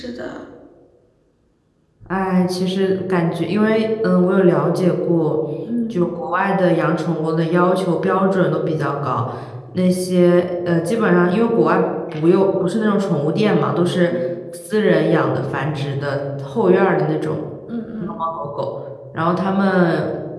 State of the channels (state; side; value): identical; both; correlation 1.00